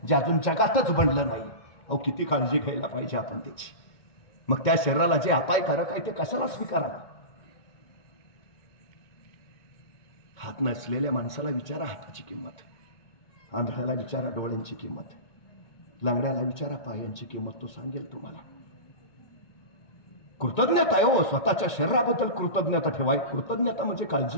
जे अजून जगातच बनलं नाही. अहो, किती काळजी घ्यायला पाहिजे आपण त्याची. मग त्या शरीराला जे अपायकारक आहे ते कशाला स्वीकारावं? हात नसलेल्या माणसाला विचारा हाताची किंमत, आंधळ्याला विचारा डोळ्यांची किंमत, लंगड्याला विचारा पायांची किंमत, तो सांगेल तुम्हाला. कृतज्ञता आहे हो, स्वतःच्या शरीराबद्दल कृतज्ञता ठेवाय. कृतज्ञता म्हणजे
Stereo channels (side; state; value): right; late; 2.1 ms